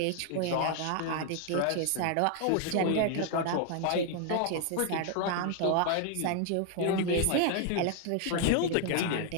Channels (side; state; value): both; different; correlation 0.00